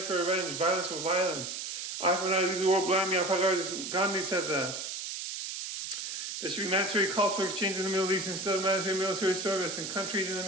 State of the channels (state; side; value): noise; right; hiss, 5 dB below the sound